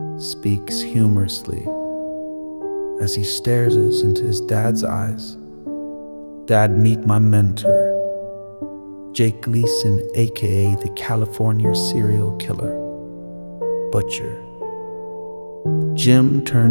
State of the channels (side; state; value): both; inverted; correlation -1.00